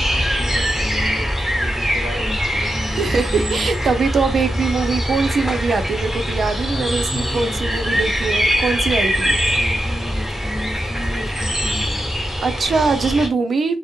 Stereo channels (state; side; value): normal; both; correlation 0.88